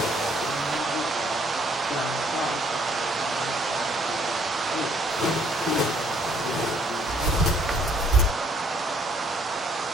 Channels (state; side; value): normal; both; correlation 0.64